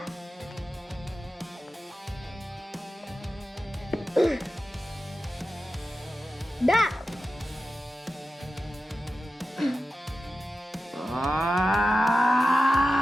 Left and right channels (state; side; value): normal; both; correlation 0.93